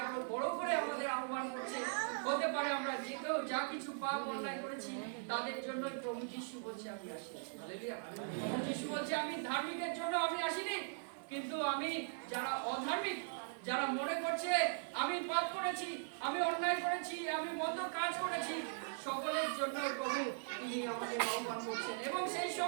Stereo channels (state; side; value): silent; left; digital silence